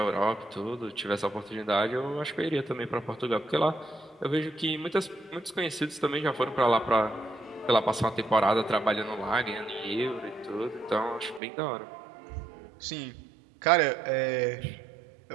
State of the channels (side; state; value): left; drops out; at 11.4 s